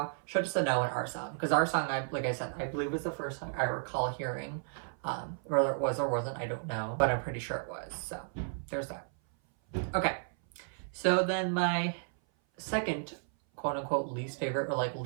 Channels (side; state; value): left; silent; 56 dB below the other